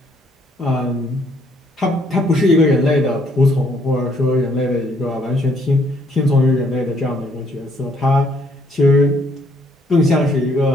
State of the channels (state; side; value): normal; both; correlation 0.67